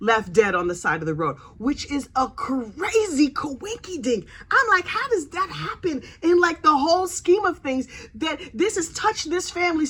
dead on the side of the road, which is a crazy coinky dink. I'm like, how does that happen in like the whole scheme of things, that this has touched this family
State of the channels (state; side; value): identical; both; correlation 1.00